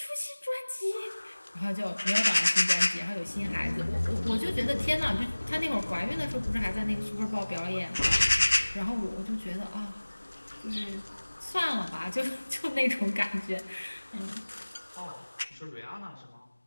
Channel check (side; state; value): both; inverted; correlation -1.00